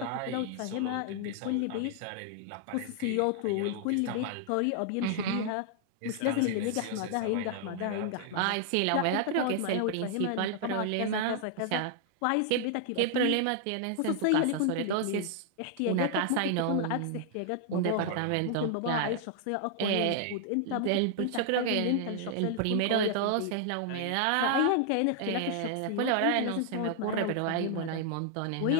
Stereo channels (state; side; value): different; both; correlation 0.00